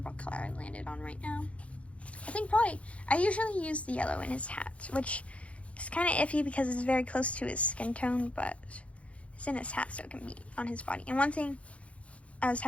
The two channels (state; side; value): late; right; 0.063 ms